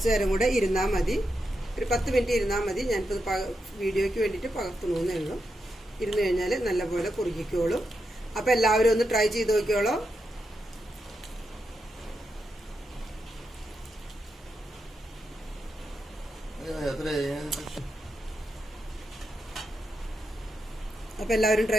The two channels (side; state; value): both; normal; correlation 0.85